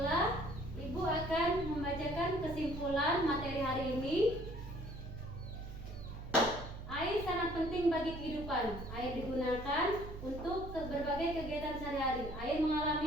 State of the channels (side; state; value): right; noise; hum, 11 dB below the sound